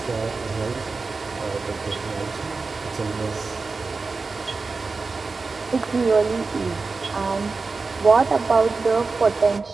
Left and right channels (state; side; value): quieter; left; 4.1 dB